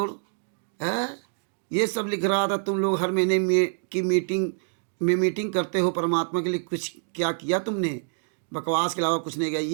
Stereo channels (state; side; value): silent; left; digital silence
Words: है। ये सब लिख रहा था तुम लोग हर महीने में की मीटिंग करते हो, परमात्मा के लिए कुछ क्या किया तुमने? बकवास के अलावा कुछ नहीं